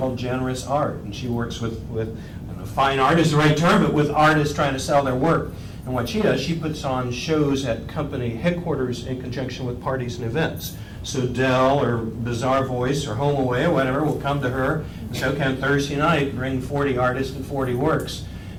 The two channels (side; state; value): both; identical; correlation 1.00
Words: Generous Art, and she works with I don't know, fine art is the right term, but with artists trying to sell their work. And what she does, she puts on shows at company headquarters in conjunction with parties and events. So Dell or Bizarre Voice or Home Away or whatever will come to her and say, okay, on Thursday night, bring 40 artists and 40 works.